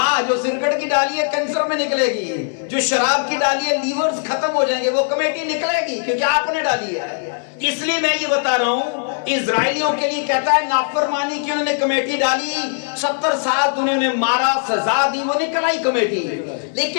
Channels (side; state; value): right; silent; 66 dB below the other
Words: जो सिगरेट की डाली है कैंसर में निकलेगी, जो शराब की डाली है लीवर्स खत्म हो जाएंगे, वो कमेटी निकलेगी क्योंकि आपने डाली है। इसलिए मैं ये बता रहा हूं, इजराइलियों के लिए कहता है नाफरमानी की उन्होंने कमेटी डाली, 70 साल उन्होंने मारा, सजा दी, वो निकल आई कमेटी।